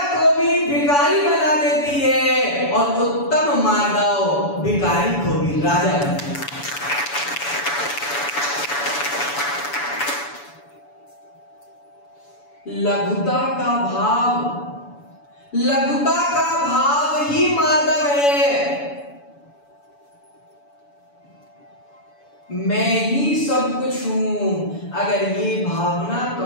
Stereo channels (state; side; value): late; right; 7.0 ms